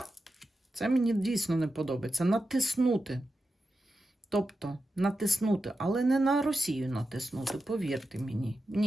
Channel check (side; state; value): both; normal; correlation 0.90